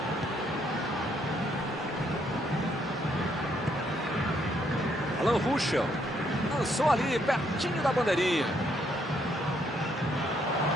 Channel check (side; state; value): both; normal; correlation 0.72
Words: Alan Ruschel lançou ali pertinho da bandeirinha.